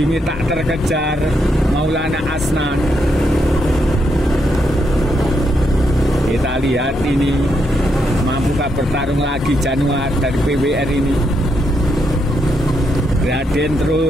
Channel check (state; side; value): normal; both; correlation 0.79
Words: tak terkejar Maulana Asnan. Kita lihat ini, mampukah bertarung lagi Januar dari PWR ini. Gradien